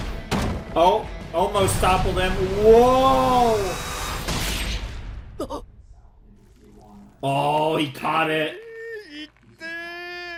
Oh, almost toppled him. Whoa! Oh, he caught it.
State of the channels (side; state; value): both; identical; correlation 1.00